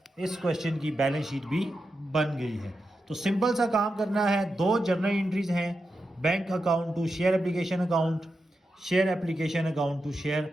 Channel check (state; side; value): normal; both; correlation 0.89